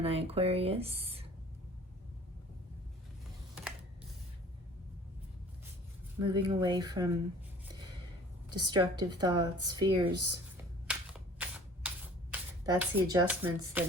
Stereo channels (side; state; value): both; normal; correlation 0.49